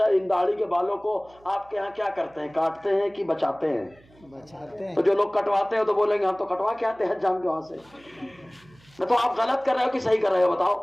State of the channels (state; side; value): noise; right; hum, 28 dB below the sound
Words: ان داڑھی کے بالوں کو آپ کے یہاں کیا کرتے ہیں، کاٹتے ہیں کہ بچاتے ہیں؟ بچاتے ہیں۔ تو جو لوگ کٹواتے ہیں تو بولیں گے ہم تو کٹوا کے آتے ہیں جان کے وہاں سے، تو آپ غلط کر رہے ہو کہ صحیح کر رہے ہو بتاؤ؟